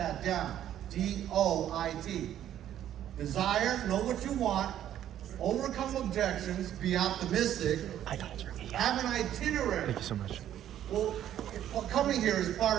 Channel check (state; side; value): quieter; left; 11.2 dB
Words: down. D-O-I-T. Desire, know what you want. Overcome objections, be optimistic. Have an itinerary. Thank you so much. Well, coming here is